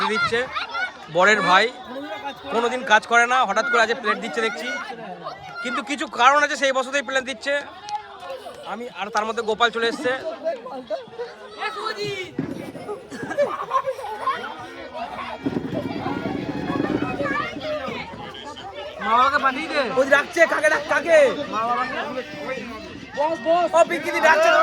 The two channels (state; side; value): identical; both; correlation 1.00